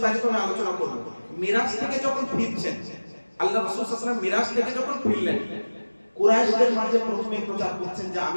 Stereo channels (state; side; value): inverted; both; correlation -1.00